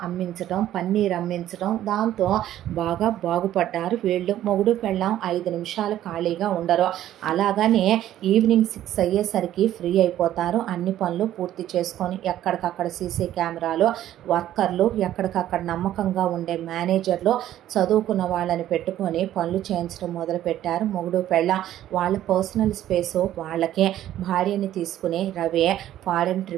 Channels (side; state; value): left; quieter; 12.5 dB